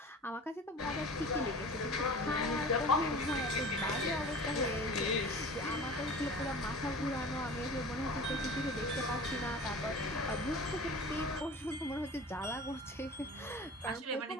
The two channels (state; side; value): normal; both; correlation 0.38